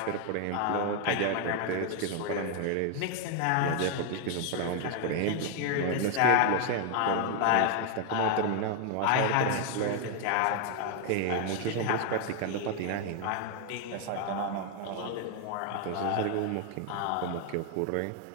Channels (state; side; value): different; both; correlation 0.00